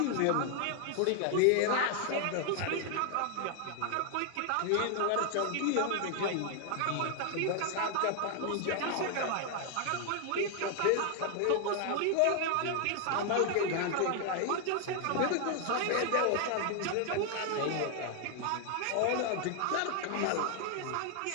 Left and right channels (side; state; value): both; different; correlation 0.00